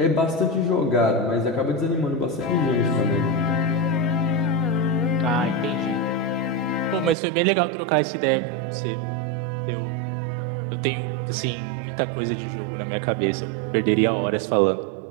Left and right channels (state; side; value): drops out; left; at 7.2 s